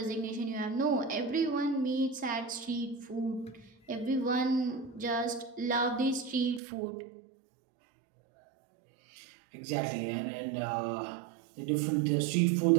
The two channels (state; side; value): drops out; left; at 6.6 s